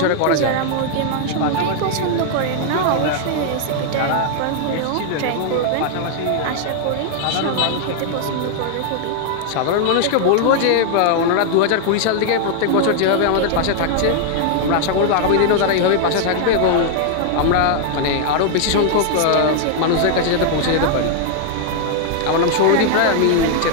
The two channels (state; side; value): different; both; correlation 0.00